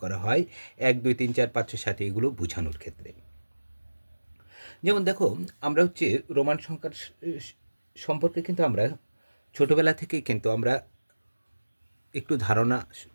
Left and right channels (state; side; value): inverted; both; correlation -1.00